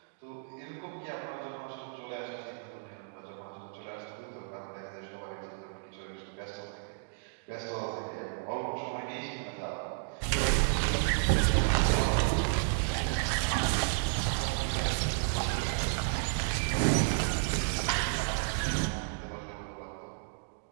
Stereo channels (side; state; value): left; silent; digital silence